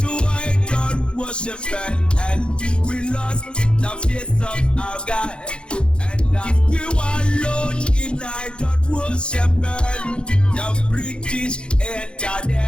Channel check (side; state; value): right; late; 0.054 ms